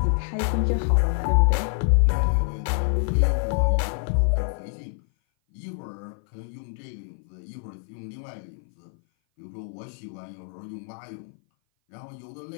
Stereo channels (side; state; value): right; silent; 57 dB below the other